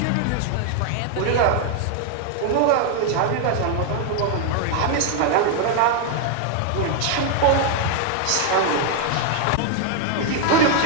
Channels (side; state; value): both; different; correlation 0.00